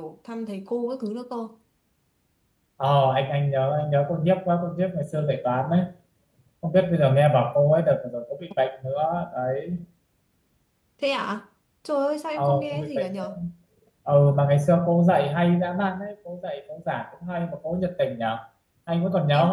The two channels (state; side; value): identical; both; correlation 1.00